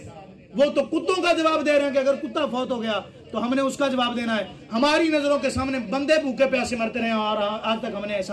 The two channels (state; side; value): identical; both; correlation 1.00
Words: وہ تو کتوں کا جواب دے رہے ہیں کہ اگر کتا فوت ہو گیا تو ہم نے اس کا جواب دینا ہے۔ ہماری نظروں کے سامنے بندے بھوکے پیاسے مرتے رہے اور آج تک ہم نے